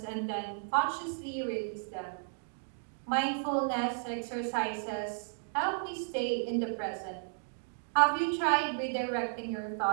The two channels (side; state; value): left; silent; digital silence